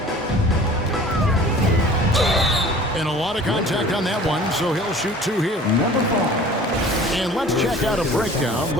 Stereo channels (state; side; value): normal; both; correlation 0.46